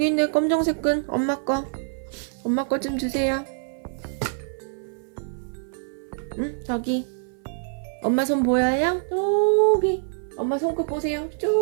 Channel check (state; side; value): silent; left; 56 dB below the other